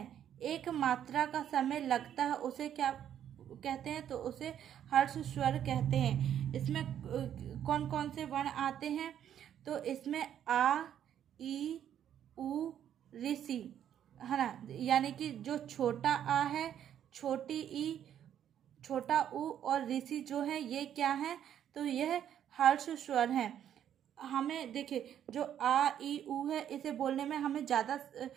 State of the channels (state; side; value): quieter; left; 10.0 dB